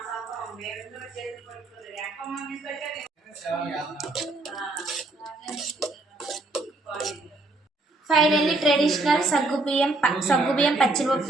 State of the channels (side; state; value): left; quieter; 3.0 dB